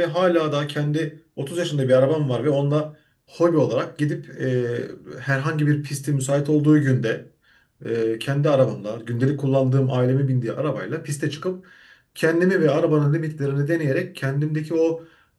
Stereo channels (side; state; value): both; identical; correlation 1.00